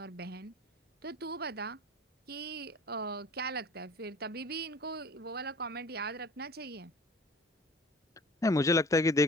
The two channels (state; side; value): normal; both; correlation 0.44